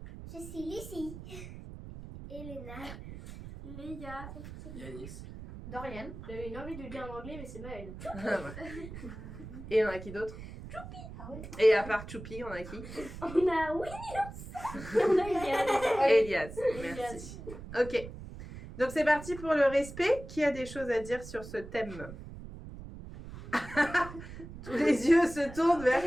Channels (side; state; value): right; noise; rumble, 12 dB below the sound